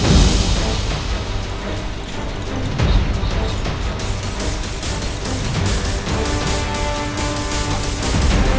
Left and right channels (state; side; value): identical; both; correlation 1.00